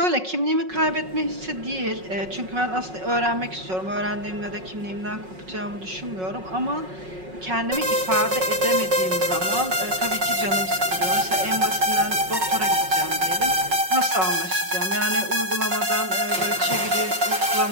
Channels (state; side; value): late; left; 5.4 ms